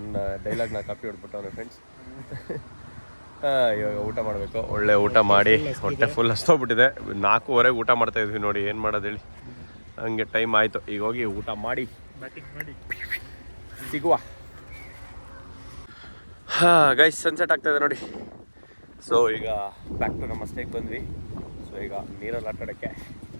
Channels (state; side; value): inverted; both; correlation -1.00